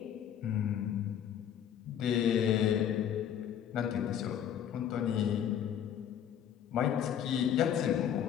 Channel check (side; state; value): right; quieter; 9.4 dB